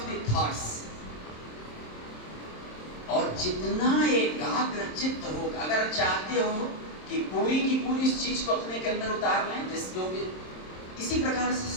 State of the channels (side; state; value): right; late; 27 ms